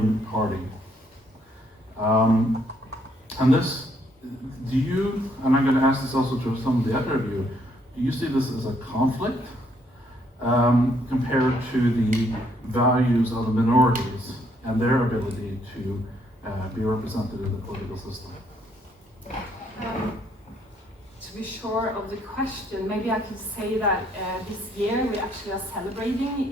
party. And this, do you, and I'm going to ask this also to some of the other of you, do you see this as a conflict compared to the values of the minorities and their ability to be represented in the political system? To be sure of the question, maybe I could say that this year we actually are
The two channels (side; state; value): both; normal; correlation 0.69